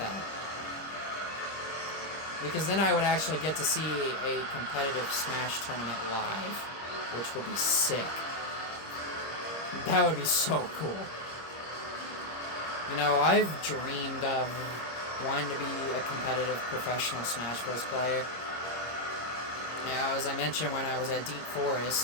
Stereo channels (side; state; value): right; late; 26 ms